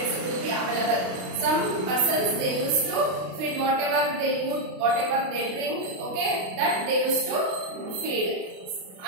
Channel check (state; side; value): late; left; 33 ms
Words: will be available. Some persons they used to feed whatever they eat, whatever they drink. Okay, that they used to feed,